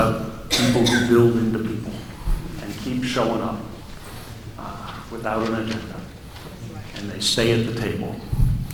people who build into people and keep showing up without an agenda, and they stay at the table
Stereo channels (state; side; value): identical; both; correlation 1.00